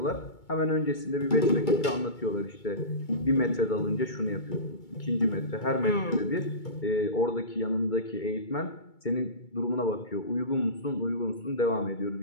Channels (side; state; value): right; late; 2.3 ms